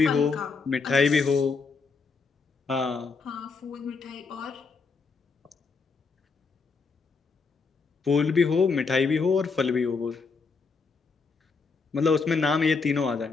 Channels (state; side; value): quieter; right; 4.7 dB